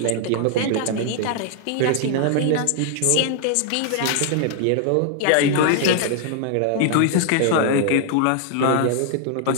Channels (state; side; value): different; both; correlation 0.00